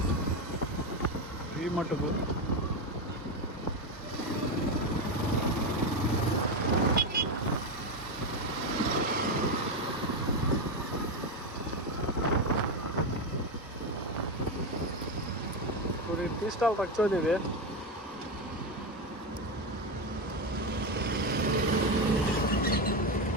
వ్యూ మటుకు. थोड़ी टी स्टॉल रखो देवे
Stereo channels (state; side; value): normal; both; correlation 0.12